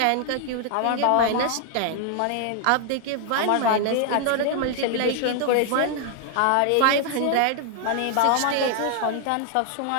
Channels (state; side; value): different; both; correlation 0.00